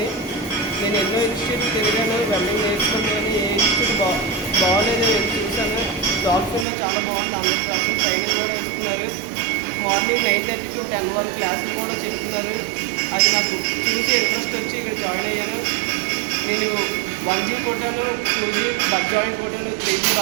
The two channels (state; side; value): drops out; left; at 6.7 s